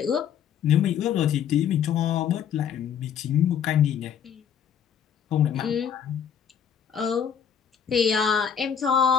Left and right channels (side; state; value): right; quieter; 8.3 dB